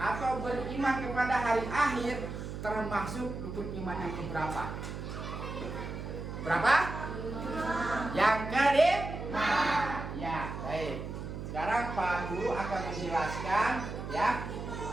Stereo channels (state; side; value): noise; right; hum, 7 dB below the sound